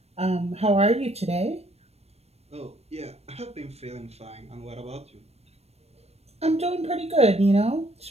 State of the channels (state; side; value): late; left; 0.30 ms